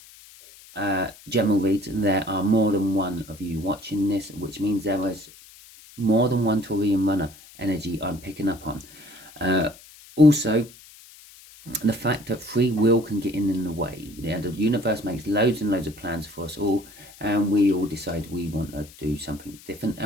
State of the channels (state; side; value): noise; left; hiss, 21 dB below the sound